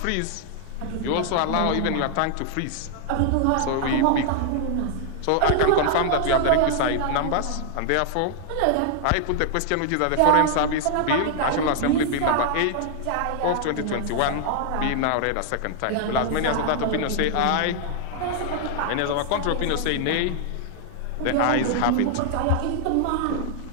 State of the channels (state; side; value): different; both; correlation 0.00